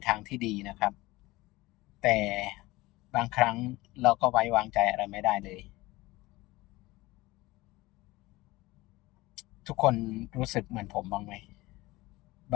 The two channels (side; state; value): right; quieter; 20.1 dB